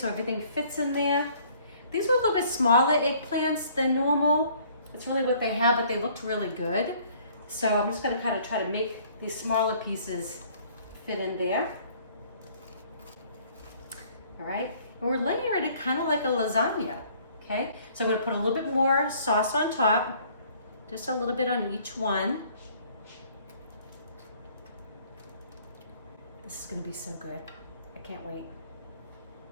everything fits in there. These were a little bit smaller eggplants than normal. It's really what they have, but they looked really good. So I'm just gonna kind of try to make these smaller pieces fit in there. All right, and we're layering it kind of like a lasagna, okay? So I'm gonna put a little bit more sauce on top, just a little bit on each one. This is gonna be so good. I can't wait.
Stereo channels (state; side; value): inverted; both; correlation -0.58